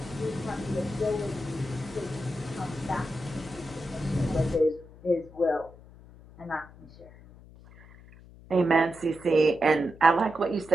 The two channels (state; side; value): noise; left; hum, 21 dB below the sound